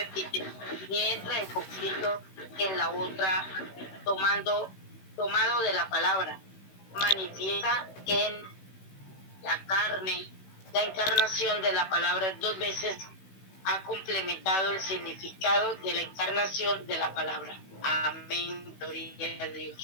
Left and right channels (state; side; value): late; right; 16 ms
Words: ni entra en conflicto en la otra, tomado de la palabra. Manifiesta en la carne. La encarnación de la palabra dos veces ha complementado el significado de la encarnación de la palabra. Amén, gloria a